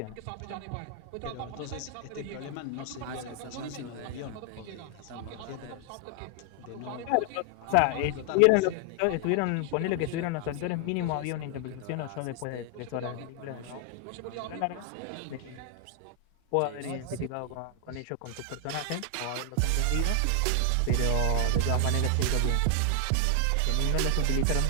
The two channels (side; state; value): both; different; correlation 0.00